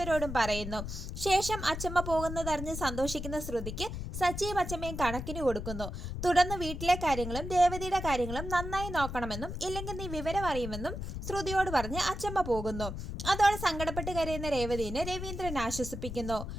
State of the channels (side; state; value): left; noise; rumble, 6 dB below the sound